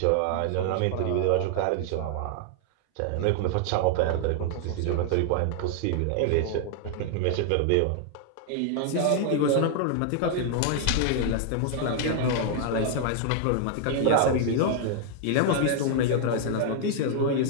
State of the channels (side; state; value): both; different; correlation 0.00